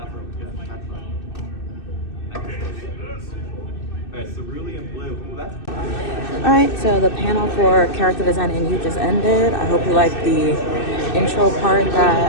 good. That's fine. Okay. Alright, Cerulean Blue. Ooh, that's Alright, so the panel for character design and you just ended. I hope you liked the intro part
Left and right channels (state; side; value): late; right; 2.6 ms